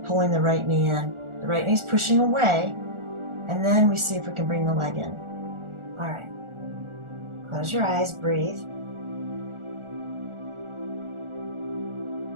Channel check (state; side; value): late; left; 1.4 ms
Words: pulling the right knee in. The right knee's pushing away, and then we see if we can bring the leg in. All right. Close your eyes, breathe.